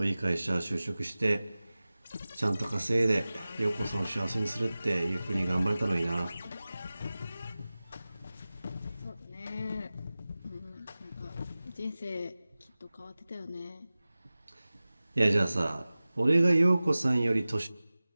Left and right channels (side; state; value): both; inverted; correlation -0.97